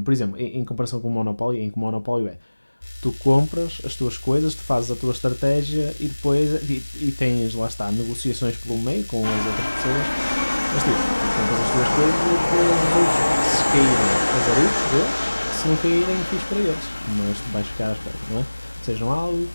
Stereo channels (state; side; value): inverted; both; correlation -1.00